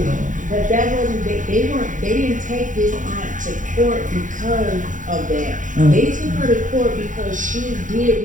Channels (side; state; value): left; late; 0.37 ms